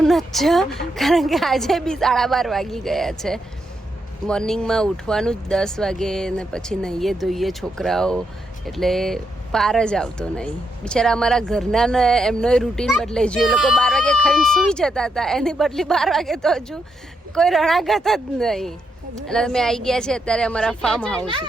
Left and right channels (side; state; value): both; normal; correlation 0.80